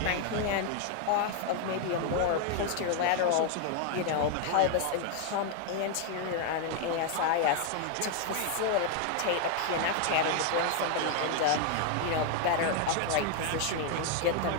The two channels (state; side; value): different; both; correlation 0.00